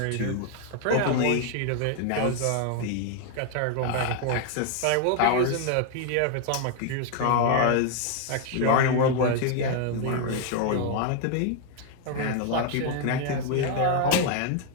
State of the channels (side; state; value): both; different; correlation 0.00